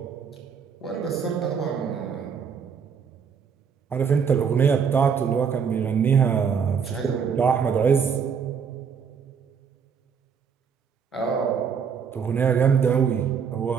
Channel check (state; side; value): quieter; left; 6.7 dB